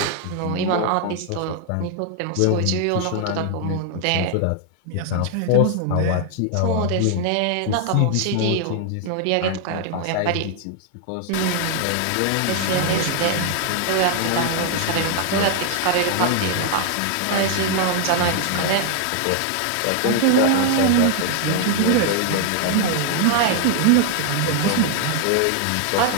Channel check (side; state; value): both; different; correlation 0.00